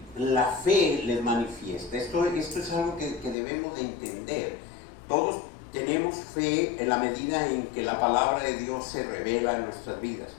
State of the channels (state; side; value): drops out; right; at 3.4 s